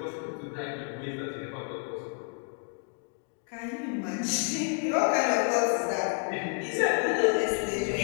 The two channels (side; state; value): right; quieter; 39.4 dB